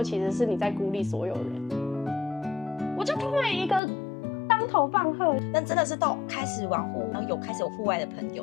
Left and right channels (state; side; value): drops out; right; at 3.8 s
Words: 其实是你在孤立所有人？”我就突然一个当头棒喝。但真的是到开始玩户，然后开始有户外的朋